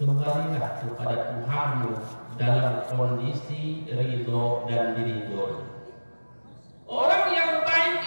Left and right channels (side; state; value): both; inverted; correlation -1.00